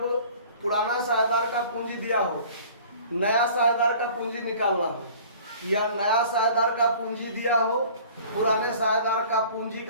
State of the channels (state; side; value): inverted; both; correlation -0.47